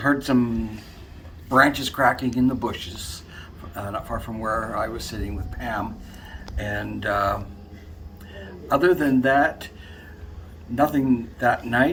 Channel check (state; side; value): identical; both; correlation 1.00